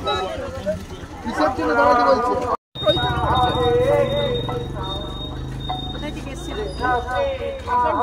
কিসের জন্য দাঁড়াতে বলছে?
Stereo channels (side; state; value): both; identical; correlation 1.00